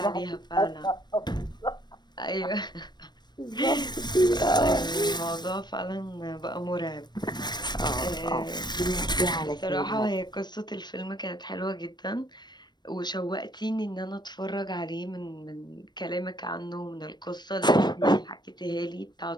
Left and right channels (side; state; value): right; late; 0.21 ms